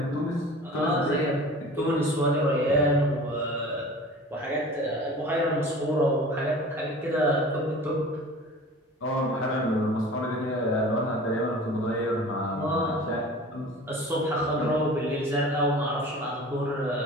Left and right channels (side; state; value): both; normal; correlation 0.41